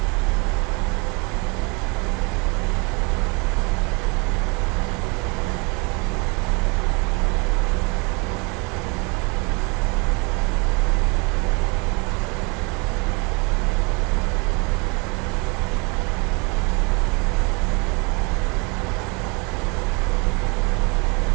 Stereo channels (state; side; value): quieter; left; 30.1 dB